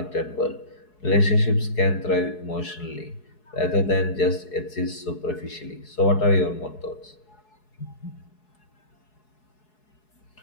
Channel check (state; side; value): late; right; 4.7 ms